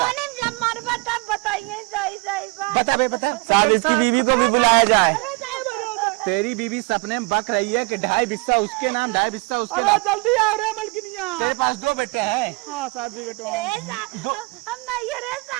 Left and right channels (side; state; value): left; quieter; 28.3 dB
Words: जब मरबा तब बताइए सही सही बात। बता बे बता। साहब इसकी बीवी को भी बुलाया जाए। तेरी बीवी सपने में बक रही है कि 2.5 बिस्सा उसके नाम 2.5 बिस्सा उसके नाम। जल्दी आ रहे मलकिनिया। तेरे पास 2 बेटे हैं। हाँ साहब जी बेटवा हम नहीं रहे